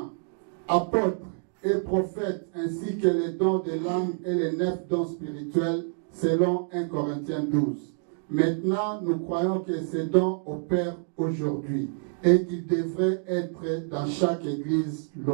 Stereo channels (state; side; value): silent; left; digital silence